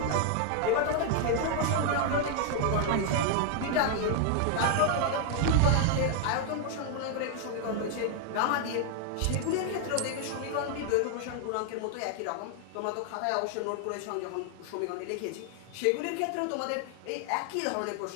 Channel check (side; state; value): both; different; correlation 0.00